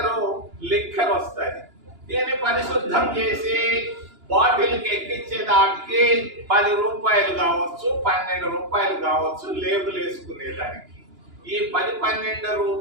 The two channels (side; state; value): left; late; 2.9 ms